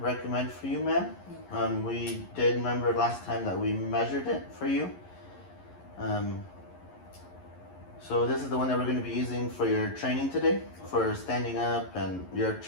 for you, ma'am. We did remember last time that we measured it for you. So this is the one that we're going to be using for your training today, for standing up and your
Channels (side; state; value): right; late; 11 ms